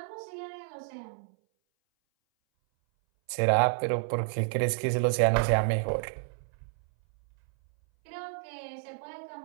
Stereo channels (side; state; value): left; silent; 58 dB below the other